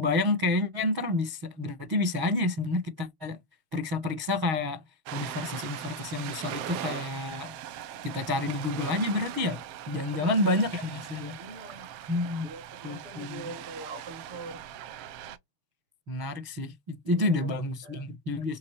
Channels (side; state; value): left; late; 6.4 ms